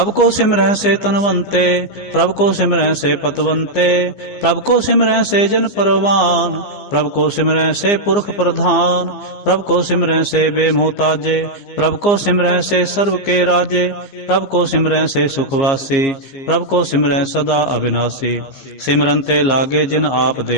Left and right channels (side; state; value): right; late; 15 ms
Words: ਕੋ ਸਿਮਰੈ ਸੇ ਤਨਵੰਤੇ, ਪ੍ਰਭ ਕੋ ਸਿਮਰੈ ਸੇ ਪਤਵੰਤੇ। ਪ੍ਰਭ ਕੋ ਸਿਮਰੈ ਸੇ ਜਨ ਪਰਵਾਨ, ਪ੍ਰਭ ਕੋ ਸਿਮਰੈ ਸੇ ਪੁਰਖ ਪ੍ਰਧਾਨ। ਪ੍ਰਭ ਕੋ ਸਿਮਰੈ ਸੇ ਬੇਮੋਹਤਾਜੇ, ਪ੍ਰਭ ਕੋ ਸਿਮਰੈ ਸੇ ਸਰਬ ਕੇ ਰਾਜੇ। ਪ੍ਰਭ ਕੋ ਸਿਮਰੈ ਸੇ ਸੁਖਵਾਸੀ, ਪ੍ਰਭ ਕੋ ਸਿਮਰੈ ਸਦਾ ਅਬਿਨਾਸੀ। ਸਿਮਰਨ ਤੇ ਲਾਗੇ ਜਿਨ ਆਪ